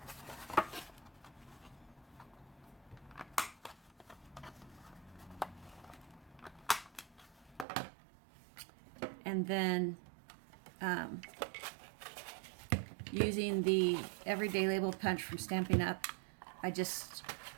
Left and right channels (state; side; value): drops out; left; at 7.7 s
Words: And then using the Everyday Label Punch from Stampin' Up, I just